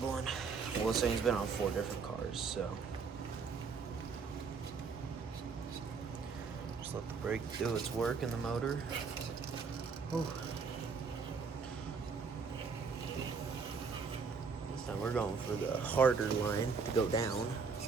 one. Well, this thing's been on 4 different cars, so just let the brake do its work in the motor. Whew. This time we're going for the harder line to go down.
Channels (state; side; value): quieter; left; 5.2 dB